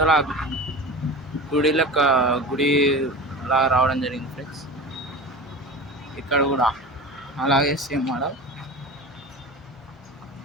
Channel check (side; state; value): both; normal; correlation 0.32